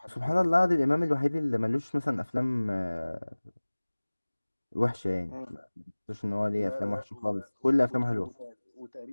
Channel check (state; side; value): inverted; both; correlation -1.00